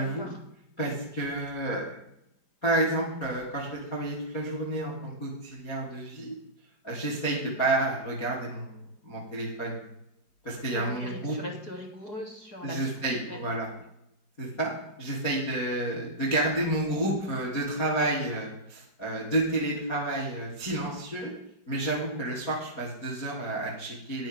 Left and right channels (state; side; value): late; right; 4.9 ms